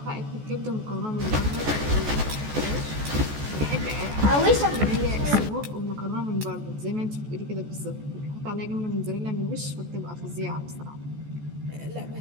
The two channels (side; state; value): left; late; 14 ms